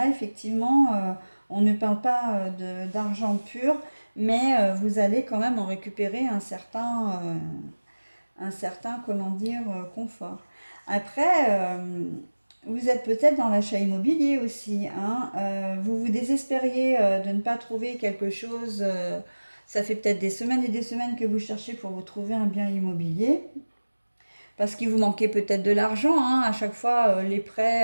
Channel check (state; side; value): inverted; both; correlation -1.00